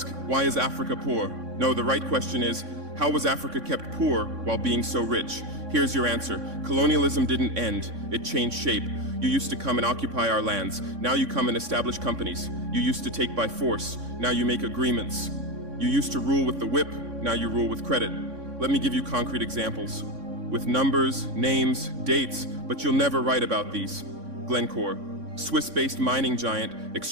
why is Africa poor? No, the right question is, how was Africa kept poor while being so rich? Here's your answer. Colonialism didn't end, it changed shape. You used to come and occupy our lands. Now you come and establish companies. You used to take by force. Now you make agreements. You used to rule with the whip. Now you rule with credit. Let me give you concrete examples. With numbers, names, dates, but you'll never write about these. Glencore, Swiss-based mining giant,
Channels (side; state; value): left; late; 3.6 ms